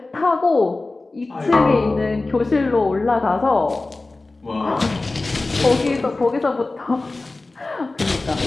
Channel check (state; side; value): quieter; right; 3.3 dB